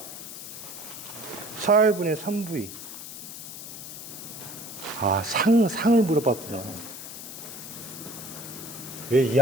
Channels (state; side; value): noise; left; hiss, 10 dB below the sound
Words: 4분의 3V. 아, 상을 물어봤구나. 왜